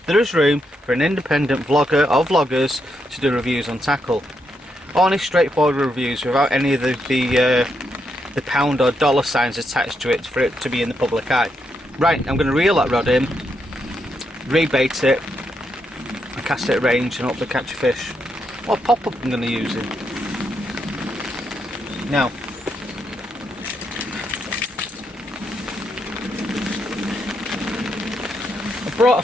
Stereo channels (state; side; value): normal; both; correlation 0.80